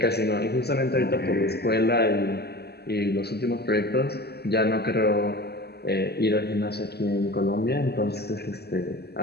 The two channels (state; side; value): late; right; 0.47 ms